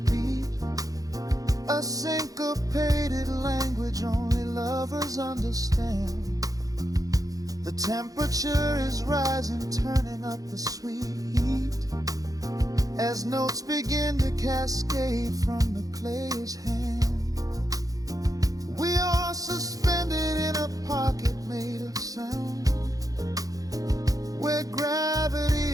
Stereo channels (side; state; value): left; late; 0.17 ms